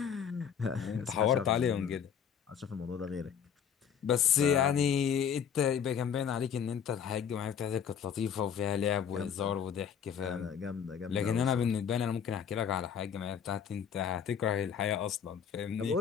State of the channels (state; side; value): quieter; right; 7.9 dB